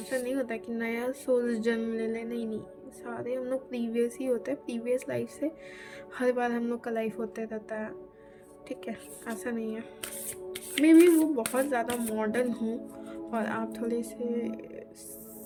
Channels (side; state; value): both; identical; correlation 1.00